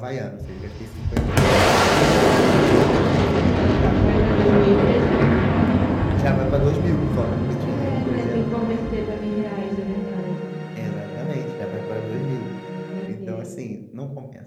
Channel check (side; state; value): both; identical; correlation 1.00